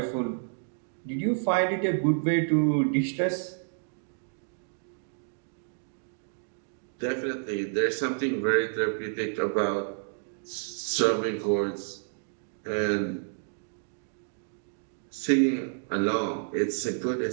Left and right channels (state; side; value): silent; left; digital silence